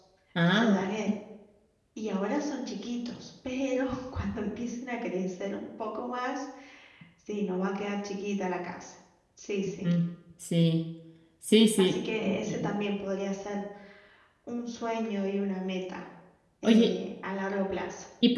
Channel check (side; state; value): both; identical; correlation 1.00